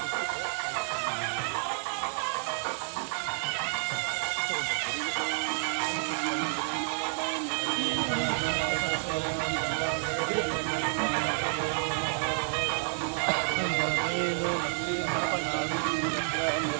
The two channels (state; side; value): silent; left; 58 dB below the other